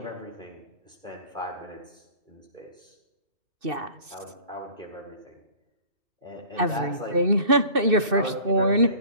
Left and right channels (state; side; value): late; left; 2.6 ms